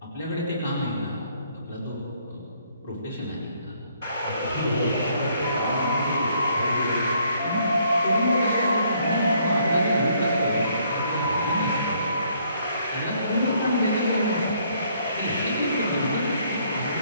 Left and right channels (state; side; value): inverted; both; correlation -0.67